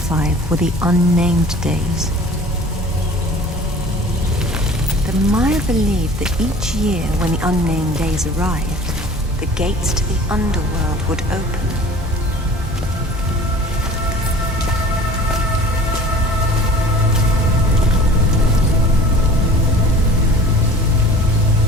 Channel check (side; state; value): both; normal; correlation 0.45